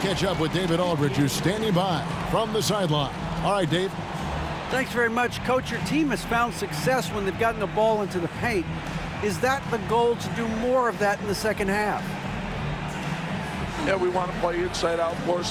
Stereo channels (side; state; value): both; identical; correlation 1.00